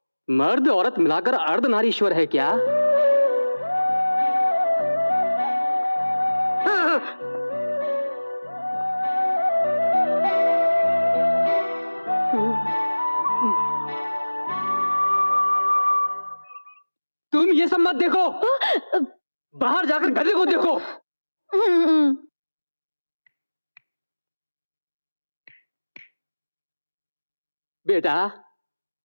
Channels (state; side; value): inverted; both; correlation -1.00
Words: मर्द औरत मिलाकर अर्धनारीश्वर है क्या? तुम ये सब मत देखो, बाहर जाकर गधे को देखो। बेटा,